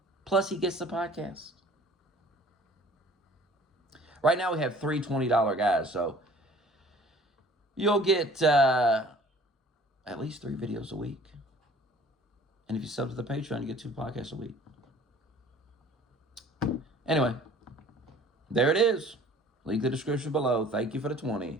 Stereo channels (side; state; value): both; normal; correlation 0.50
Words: Plus, he gets the podcast. Right now, we have 3 $20 guys, so you'll get at least 3 videos a week. And if you sub to the Patreon, you get 2 podcasts a week. Anyway, there it is. Link in the description below. Thank you for the